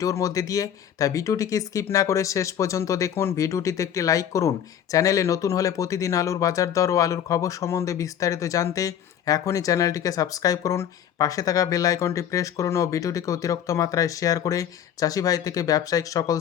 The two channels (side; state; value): right; quieter; 9.4 dB